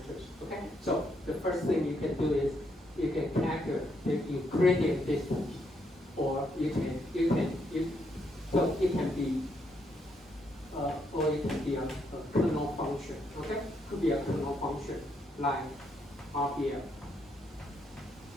Okay, so the first thing you can do is you can calculate the Euclidean distance, or so it can be or it can be a kernel function. Okay, could be a kernel function like RPM.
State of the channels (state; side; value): normal; both; correlation 0.76